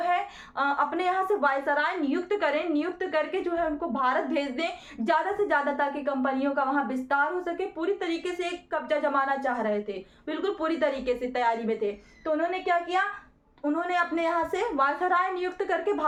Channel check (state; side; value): identical; both; correlation 1.00